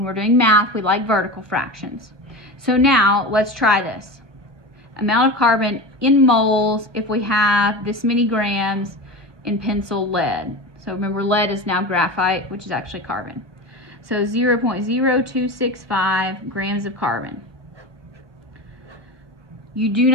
we're doing math, we like vertical fractions. So now let's try this. Amount of carbon in moles if we have this many grams in pencil lead. So remember, lead is now graphite, which is actually carbon. So 0.0265 grams of carbon. You do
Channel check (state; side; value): late; left; 1.0 ms